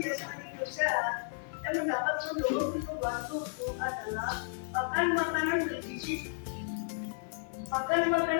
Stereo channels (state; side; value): silent; right; digital silence